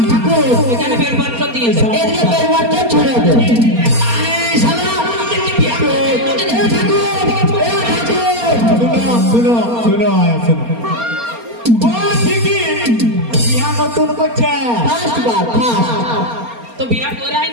ঠাকুর এখানে বেরপাত্র দিয়েছে এদিকে পরিবারটা ছড়ে দে। এই শালা, এ ঠাকুর, শুনো আয়া শুনো। ও ঠিকই বিয়া নতুন করছে। ফার্স্ট বার ফার্স্ট তো বিয়া করাই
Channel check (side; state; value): left; late; 4.3 ms